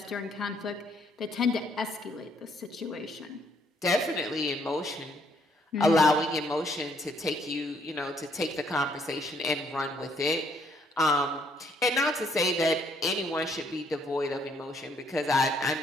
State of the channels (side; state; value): both; normal; correlation 0.68